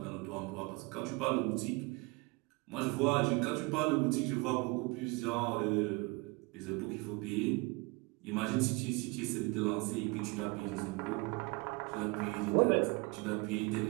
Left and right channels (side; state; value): left; quieter; 26.9 dB